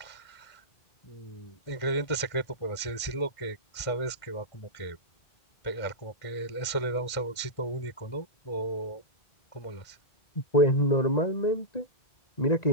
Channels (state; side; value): late; right; 1.5 ms